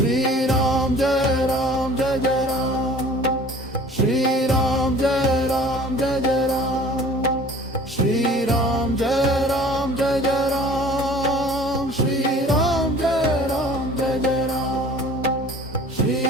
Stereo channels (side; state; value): both; normal; correlation 0.47